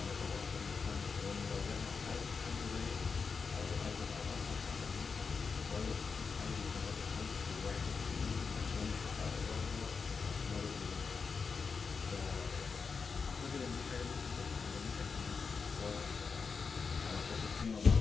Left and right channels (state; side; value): quieter; right; 5.2 dB